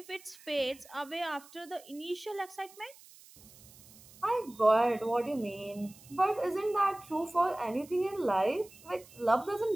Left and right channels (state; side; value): noise; right; hiss, 22 dB below the sound